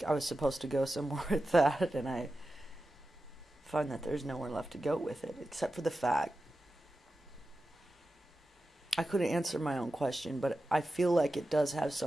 I was supposed to go somewhere with that, and I find that there's nowhere left to go with it, except for the fact I couldn't answer my own question, but I feel like it does have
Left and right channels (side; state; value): both; normal; correlation 0.92